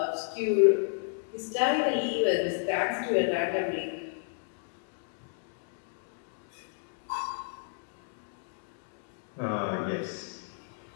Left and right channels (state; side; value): silent; right; digital silence